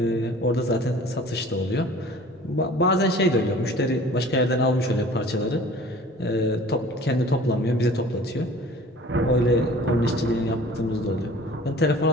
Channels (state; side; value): normal; both; correlation 0.46